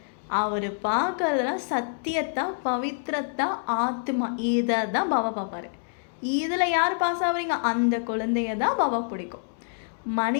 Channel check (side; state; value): right; silent; digital silence